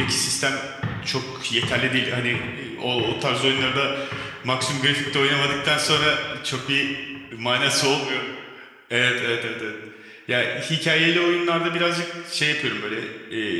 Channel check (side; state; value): both; identical; correlation 1.00